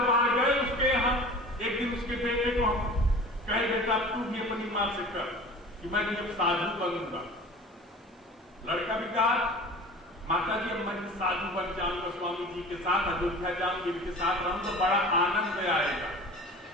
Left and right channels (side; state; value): both; normal; correlation 0.40